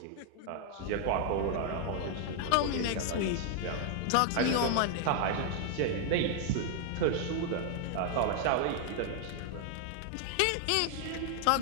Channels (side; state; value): both; different; correlation 0.00